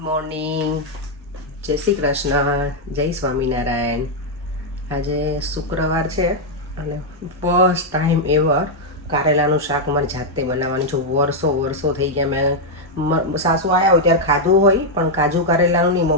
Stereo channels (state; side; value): normal; both; correlation -0.02